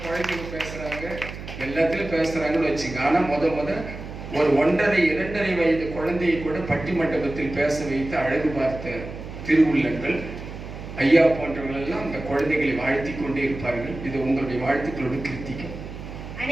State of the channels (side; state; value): right; noise; hum, 11 dB below the sound